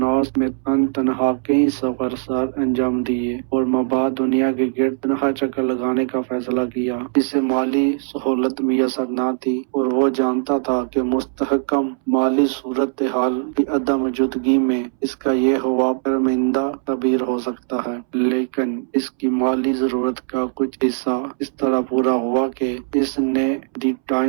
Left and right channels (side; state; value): left; silent; 65 dB below the other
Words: में तनहा कई सफर सर अंजाम दिए और मबाद दुनिया के गिर्द तनहा चक्कर लगाने का फैसला किया। इसे माली सहूलत मुयसर न थी और वो जानता था कि मुस्तहकम माली सूरत हाल की अदम मौजूदगी में इसका ये हुआ शर्मिंदा तबीर हो सकता है। लेकिन इसकी माली जरूरत का कुछ हिस्सा इस तरह पूरा हुआ कि इसने दी